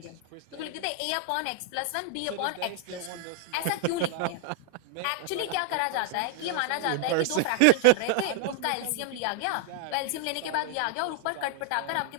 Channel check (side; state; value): both; different; correlation 0.00